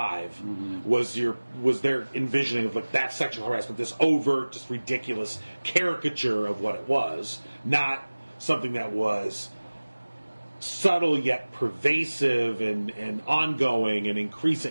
was their envisioning of like that sexual harassment, this overt, just ridiculous caricature of what it was, not something that was subtle yet pervasive and ongoing and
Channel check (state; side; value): inverted; both; correlation -1.00